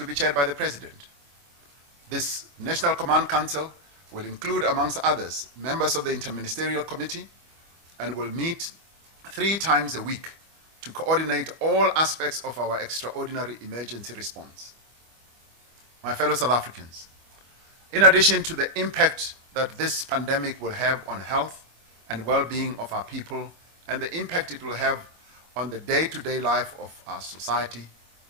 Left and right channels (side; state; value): left; late; 25 ms